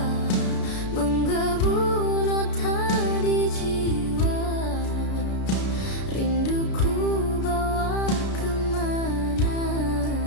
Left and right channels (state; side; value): late; right; 33 ms